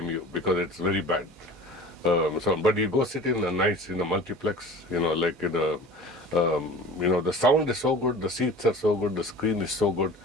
you, because it's very bad. But you go sit in a nice multiplex, like in a the sound is so good, the seats are so good, the screen is so good.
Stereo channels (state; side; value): normal; both; correlation 0.40